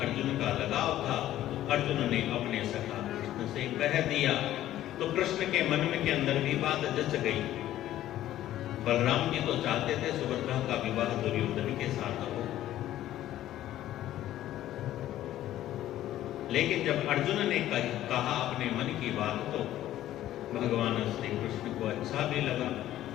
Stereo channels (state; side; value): quieter; right; 13.4 dB